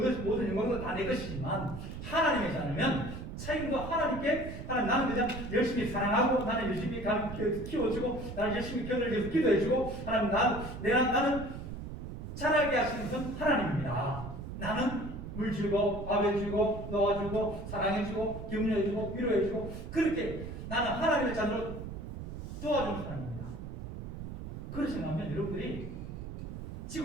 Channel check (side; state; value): right; noise; rumble, 8 dB below the sound